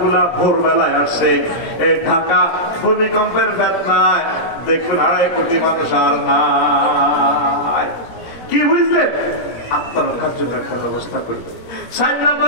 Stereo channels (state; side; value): late; right; 17 ms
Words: গুলা ভোরবেলায় আসছে। এই ঢাকা ভূমিকম্পের বেদনায় দেখবেন 2.5 কোটি মানুষ আর নাই। কি বুঝলেন? আত্মরক্ষার জন্য একটা ব্যবস্থা করি। 4 নম্বর